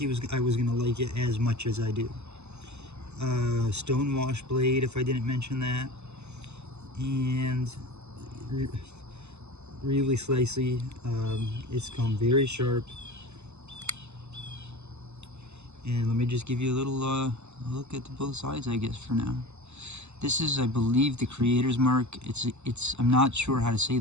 I was gonna like it as much as I do. Stone wash blade, if I didn't mention that, and really slicey. It's come very sharp. And let me just give you a little look at both sides, I guess, for now. This is, I believe, the creator's mark. I'm not sure how to say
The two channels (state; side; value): late; left; 0.81 ms